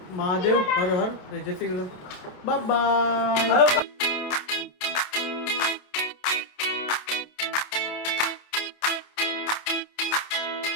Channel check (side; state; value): right; late; 27 ms